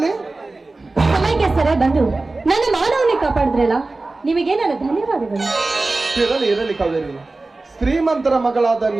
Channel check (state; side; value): quieter; left; 3.3 dB